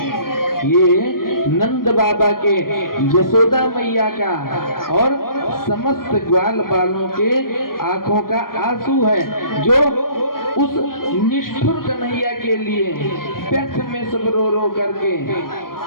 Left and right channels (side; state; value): right; late; 0.91 ms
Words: ये नंद बाबा के, यशोदा मैया का और समस्त ग्वाल बालों के आंखों का आंसू है, जो उस निष्ठुर कन्हैया के लिए व्यर्थ में सब रो रो करके